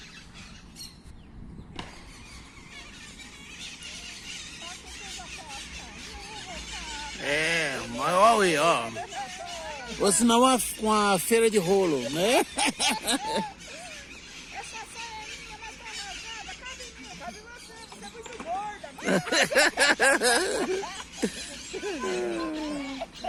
Mas olha aí, ó. Ou senão uma feira de rolo, né? Essa saia é minha, mas tá rasgada. Cabe em mim, cabe em você. Você é muito gorda.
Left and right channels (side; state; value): both; identical; correlation 1.00